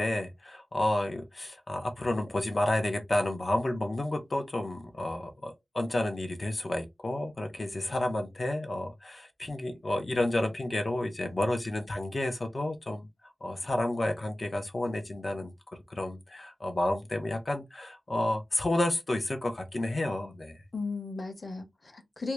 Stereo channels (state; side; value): normal; both; correlation 0.96